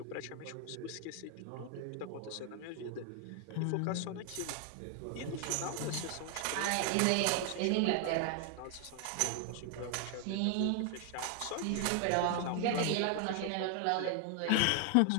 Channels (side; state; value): both; different; correlation 0.00